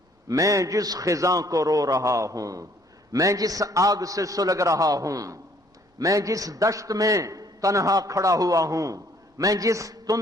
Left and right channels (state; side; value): normal; both; correlation 0.62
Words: میں جس خزاں کو رو رہا ہوں، میں جس آگ سے سلگ رہا ہوں، میں جس دشت میں تنہا کھڑا ہوا ہوں، میں جس